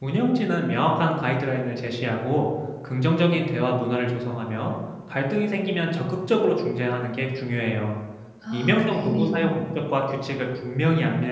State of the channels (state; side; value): identical; both; correlation 1.00